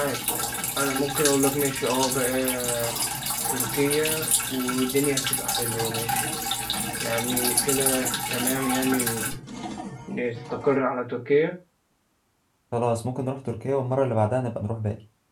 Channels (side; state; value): both; identical; correlation 1.00